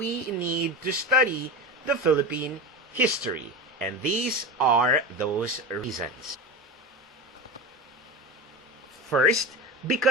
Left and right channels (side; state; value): both; normal; correlation 0.25